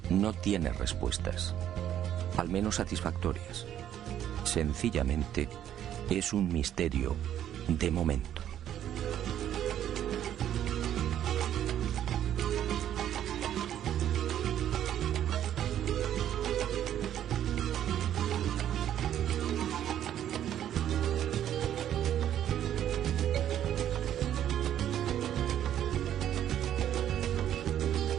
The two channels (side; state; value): left; quieter; 10.8 dB